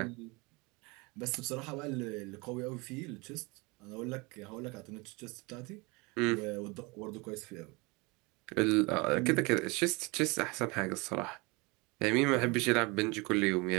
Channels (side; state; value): left; quieter; 26.8 dB